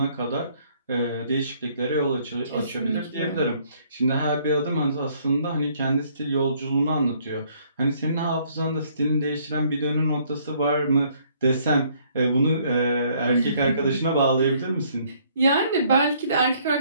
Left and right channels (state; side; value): inverted; both; correlation -0.64